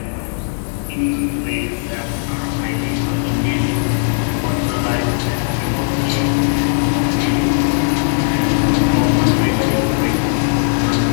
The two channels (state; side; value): silent; right; digital silence